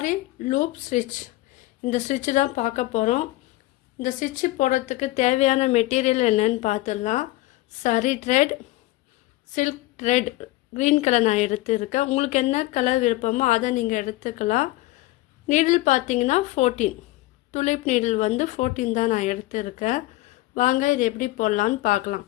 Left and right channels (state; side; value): quieter; right; 18.4 dB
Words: லூப் ஸ்டிச். இந்த ஸ்டிச்சு தான் பார்க்க போகிறோம். இந்த ஸ்டிச்சு போடுறதுக்கு தேவையான மெட்டீரியல் என்னன்னு பார்த்துடலாம். சரி thread, silk thread, green colour நான் எடுத்துருக்கேன். உங்களுக்கு என்ன கலர் விருப்பமோ அதை நீங்கள் எடுத்துக்கலாம். நீடில் பார்த்தீங்கன்னா 14, துளிப் நீடில் 14 தான் நான் எடுத்துருக்கேன். வாங்க இது எப்படி போடலான்னு பார்க்கலாம்.